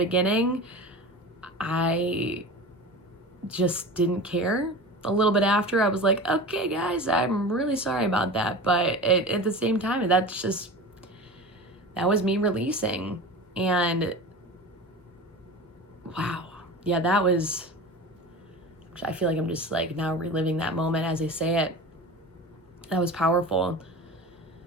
I just didn't care. A little bit after, I was like, okay, guys, I'm really sorry about that. But at the same time, that was me releasing. And wow, yeah, I feel like I'm just like now reliving that moment as I say it. That was powerful.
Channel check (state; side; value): normal; both; correlation 0.32